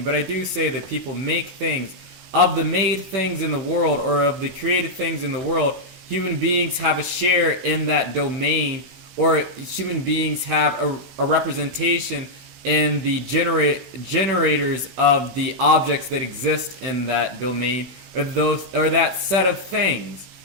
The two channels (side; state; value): left; late; 16 ms